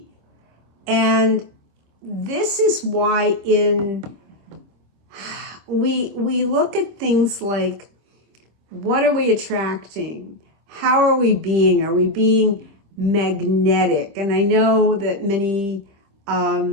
And this is why we look at things like, what are we attracting? How are we being? Are we being magnetic? And I know that many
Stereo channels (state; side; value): late; left; 25 ms